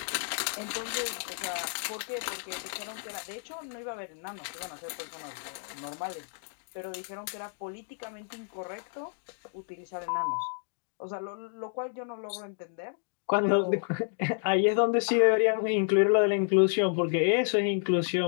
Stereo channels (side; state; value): right; silent; digital silence